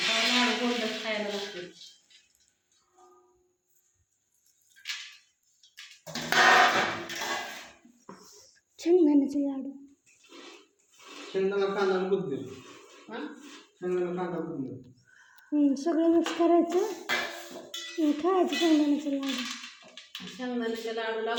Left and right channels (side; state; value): both; identical; correlation 1.00